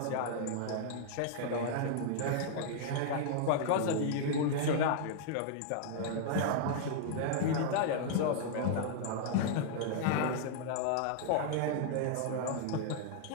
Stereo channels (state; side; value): different; both; correlation -0.01